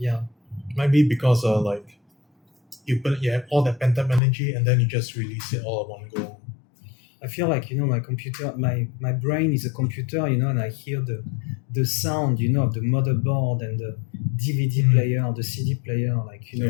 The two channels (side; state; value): right; drops out; at 4.2 s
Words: Might be because you have all that pent up energy and then you just release it all at one go. I feel like my computer, my brain is a computer, and I hear the sound, of the motherboard and the DVD player, the CD player, like